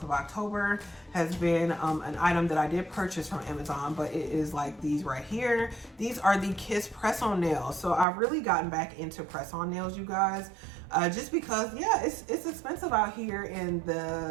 of October has been an item that I did purchase from Amazon, but it is like these right here. These are the Kiss press-on nails. So I've really gotten back into press-on nails, you guys, just because, yeah, it's expensive out here in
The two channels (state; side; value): drops out; left; at 8.1 s